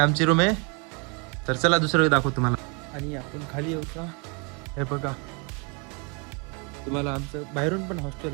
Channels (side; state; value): left; quieter; 32.8 dB